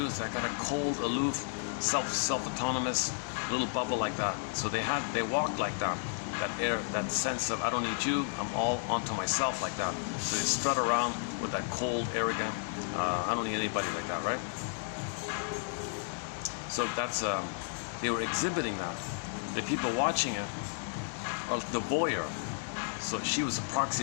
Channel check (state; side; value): silent; right; 56 dB below the other